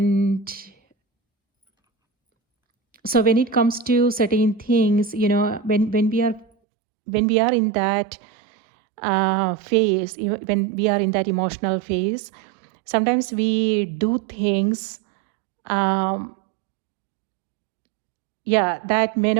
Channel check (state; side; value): drops out; left; at 6.5 s